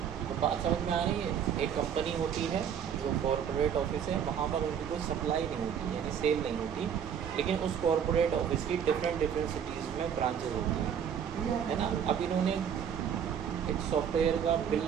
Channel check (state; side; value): quieter; left; 8.3 dB